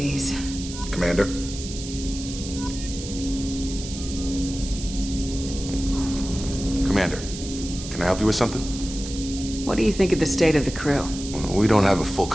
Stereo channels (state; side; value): noise; right; hiss, 11 dB below the sound